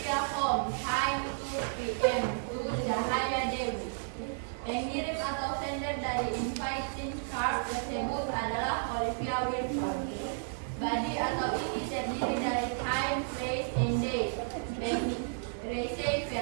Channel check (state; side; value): silent; left; digital silence